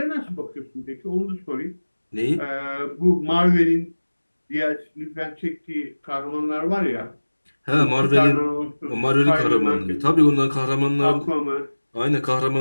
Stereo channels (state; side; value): inverted; both; correlation -1.00